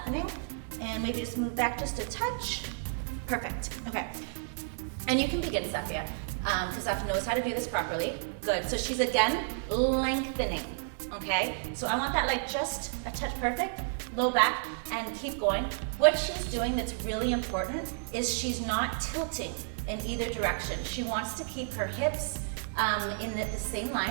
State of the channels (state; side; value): silent; left; 57 dB below the other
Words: and maybe just move back just a touch. Perfect. Okay. And you can begin, Safia, because Safia knows how to do this properly. Good. So she's again lengthening. Okay. So I want that like just a touch perfect. Low back and keep going. What she's doing that's really important is she's not tilting in either direction. She wants to keep her hips in the same